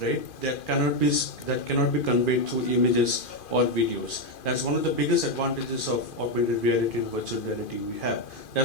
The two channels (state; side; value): late; right; 2.5 ms